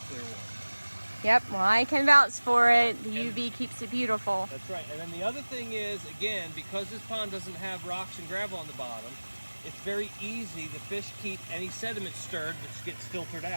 clear water. Yep, well, I can vouch for it. The UV keeps it beautiful. That's right. And then the other thing is, again, because this pond doesn't have rocks and gravel on the bottom, it's very easy. The fish keep any sediment stirred, which gets filtered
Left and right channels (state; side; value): inverted; both; correlation -1.00